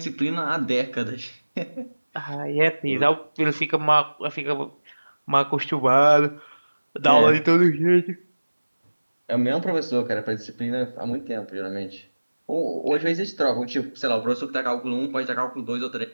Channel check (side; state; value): both; inverted; correlation -1.00